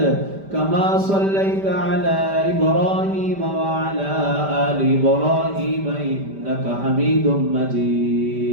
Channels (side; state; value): left; late; 5.1 ms